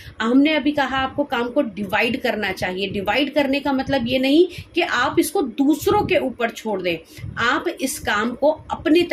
हमने अभी कहा आपको काम को डिवाइड करना चाहिए। डिवाइड करने का मतलब ये नहीं कि आप इसको दूसरों के ऊपर छोड़ दें। आप इस काम को अपने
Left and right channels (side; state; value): both; identical; correlation 1.00